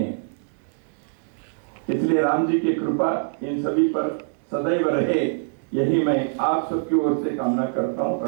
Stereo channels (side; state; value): left; silent; digital silence